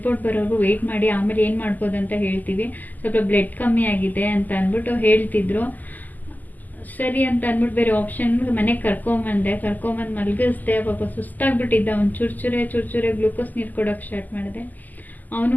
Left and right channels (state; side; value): late; right; 0.083 ms